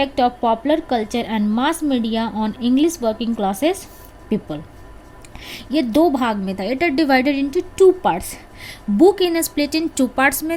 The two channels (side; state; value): both; identical; correlation 1.00